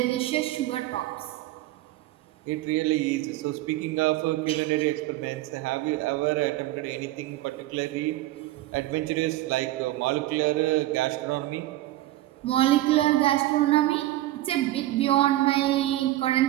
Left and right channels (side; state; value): left; quieter; 16.0 dB